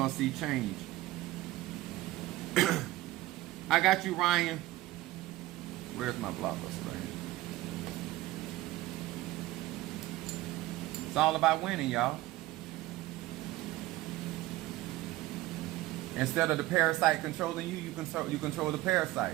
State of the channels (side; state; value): left; quieter; 17.0 dB